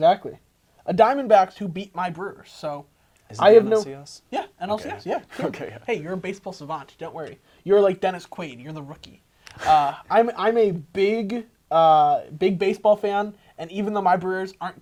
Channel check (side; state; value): both; identical; correlation 1.00